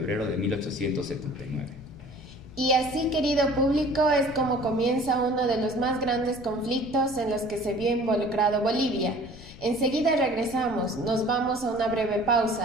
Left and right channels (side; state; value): left; noise; rumble, 18 dB below the sound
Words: de 1879. Y así, querido público, es como comienza uno de los más grandes conflictos en los que se vio involucrado Bolivia. Enseguida regresamos, nos vamos a una breve